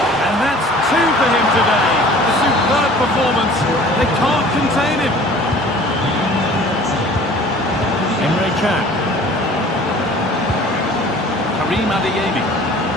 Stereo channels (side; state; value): both; normal; correlation 0.48